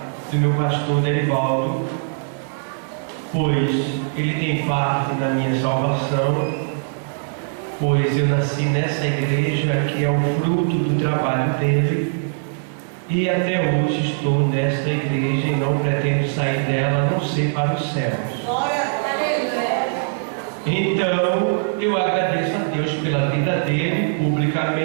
do meu pastor Derivaldo, pois ele tem parte na minha salvação, pois eu nasci nessa igreja que é o fruto do trabalho dele, e até hoje estou nesta igreja e não pretendo sair dela, a não ser para os céus. Então eu agradeço a Deus pela vida dele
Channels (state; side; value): silent; left; digital silence